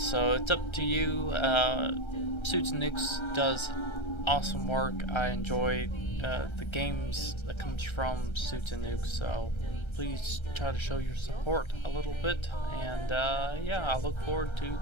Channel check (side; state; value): right; late; 1.3 ms